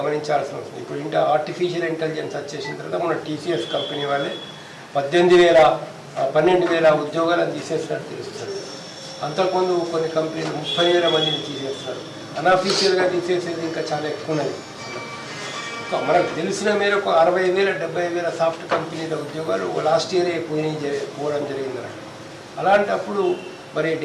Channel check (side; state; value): both; identical; correlation 1.00